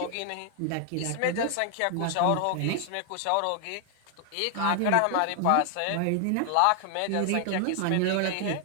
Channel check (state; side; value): different; both; correlation 0.00